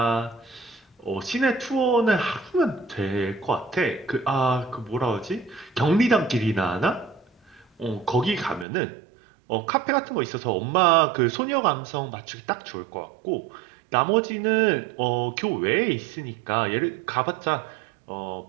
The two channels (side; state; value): left; drops out; at 8.7 s